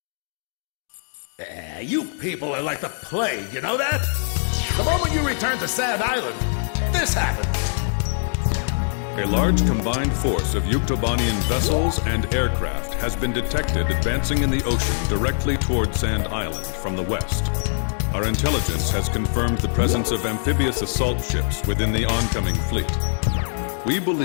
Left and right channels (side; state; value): right; silent; digital silence